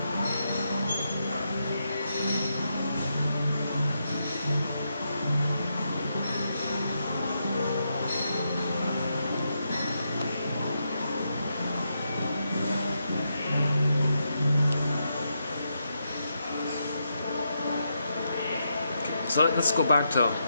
So let's go back to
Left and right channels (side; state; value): both; inverted; correlation -0.82